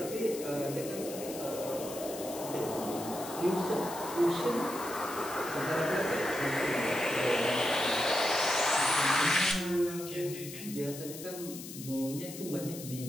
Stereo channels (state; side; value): noise; left; hiss, 12 dB below the sound